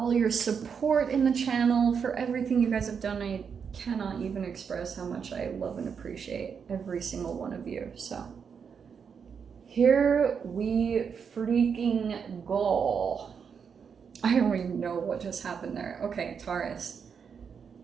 your support in the channel, for everything you guys have done. I cannot even express how much I love and appreciate every single one of you, so. Here we freaking go. I don't even know what just happened there. Okay, Taurus.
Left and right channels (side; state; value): left; quieter; 6.6 dB